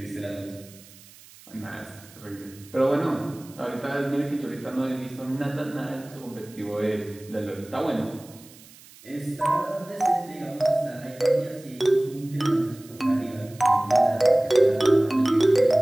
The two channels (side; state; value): right; noise; hiss, 22 dB below the sound